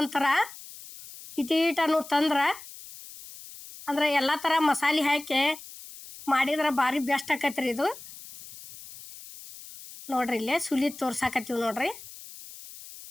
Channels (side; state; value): left; noise; hiss, 16 dB below the sound